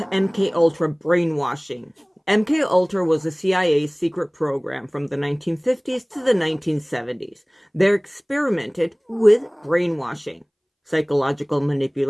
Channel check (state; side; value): identical; both; correlation 1.00